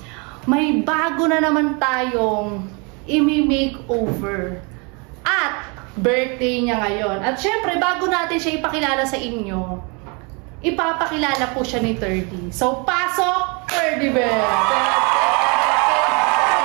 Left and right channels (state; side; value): quieter; left; 31.8 dB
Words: May bago na naman tayong i-makeover. At birthday niya ngayon. At syempre, bago natin siya ipakilala sa inyo, ipapakilala po siya ni 30. So, pasok, 30 Bell!